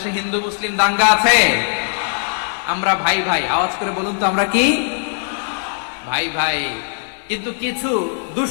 হিন্দু মুসলিম দাঙ্গা আছে? আমরা ভাই ভাই, আওয়াজ করে বলুন তো, আমরা কি ভাই ভাই? কিন্তু কিছু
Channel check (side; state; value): right; silent; 66 dB below the other